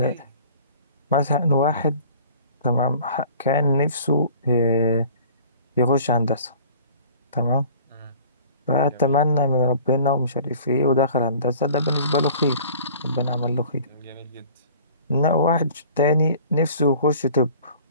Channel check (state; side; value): inverted; both; correlation -0.48